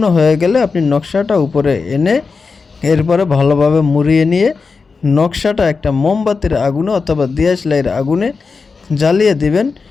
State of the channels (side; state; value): right; quieter; 4.7 dB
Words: হয়ে গেলে আপনি নকশাটা উপরে এনে এরপরে ভালোভাবে মুড়িয়ে নিয়ে নকশাটা একটা মোমবাতির আগুনে অথবা দিয়াশলাইয়ের আগুনে জ্বালিয়ে দিবেন,